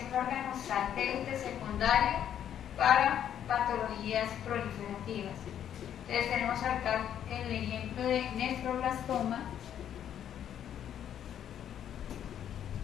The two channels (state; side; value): quieter; right; 9.9 dB